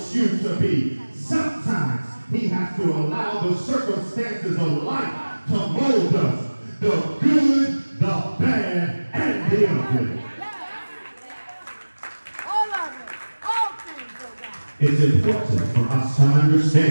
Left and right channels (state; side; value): inverted; both; correlation -1.00